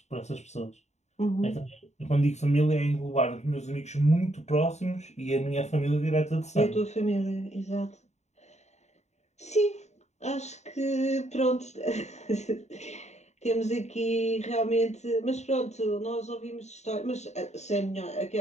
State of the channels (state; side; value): late; right; 0.33 ms